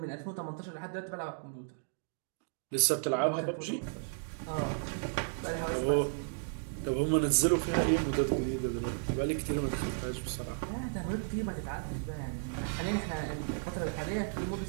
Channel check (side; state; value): left; silent; digital silence